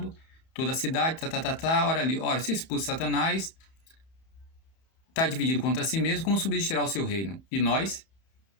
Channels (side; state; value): right; late; 31 ms